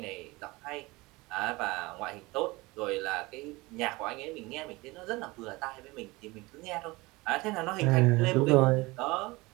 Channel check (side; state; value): left; quieter; 22.7 dB